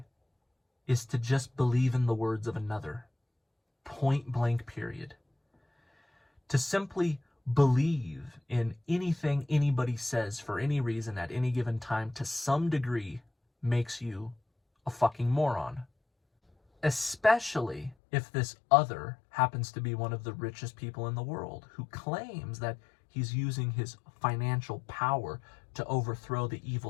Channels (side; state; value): right; drops out; at 17.9 s